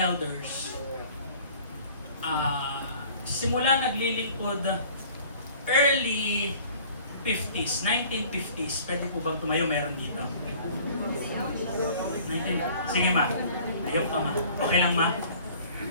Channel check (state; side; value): inverted; both; correlation -0.50